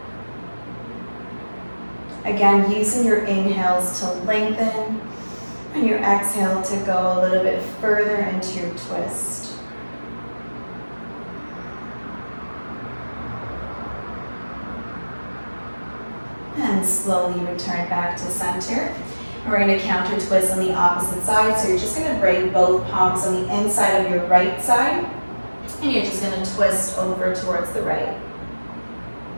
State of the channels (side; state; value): both; inverted; correlation -1.00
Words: Again, using your inhales to lengthen, and your exhale to go a little bit further into your twist. And slowly return back to center. And we're going to counter twist on the opposite side. So you're just going to bring both palms on the inside of your right side. And you're just going to twist over towards the right.